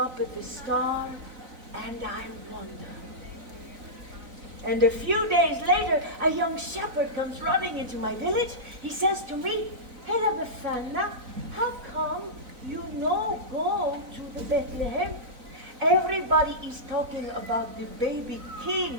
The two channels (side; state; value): left; late; 4.0 ms